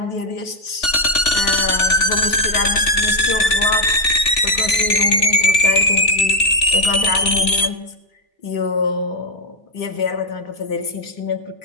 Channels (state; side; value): late; right; 3.4 ms